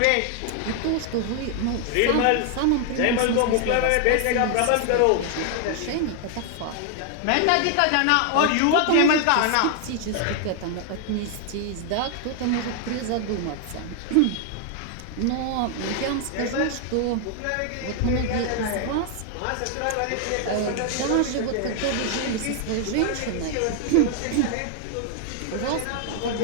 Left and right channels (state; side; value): different; both; correlation 0.00